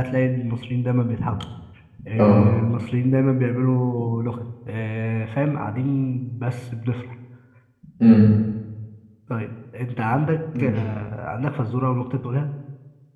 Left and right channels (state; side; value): identical; both; correlation 1.00